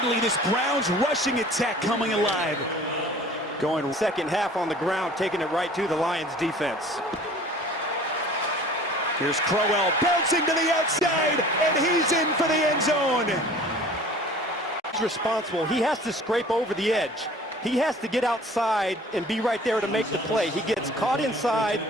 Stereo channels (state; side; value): normal; both; correlation 0.47